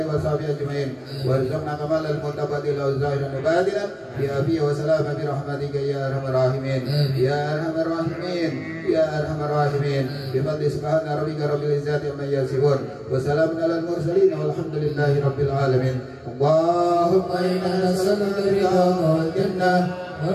وصحبه أجمعين. وارزقنا كمال المتقبل ظاهرا وباطنا بعافية وسلامة برحمتك يا أرحم الراحمين يا أرحم الراحمين يا أرحم الراحمين. بفضل سبحان ربك رب العزة عما يصفون وسلام على المرسلين والحمد لله رب العالمين. اللهم إنا نسألك رضاك والجنة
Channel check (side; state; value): both; identical; correlation 1.00